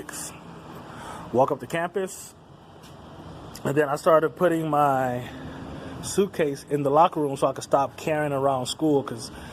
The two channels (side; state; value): both; identical; correlation 1.00